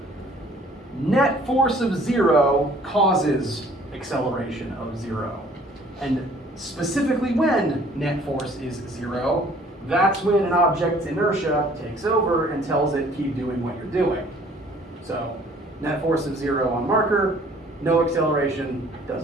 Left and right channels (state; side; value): normal; both; correlation 0.56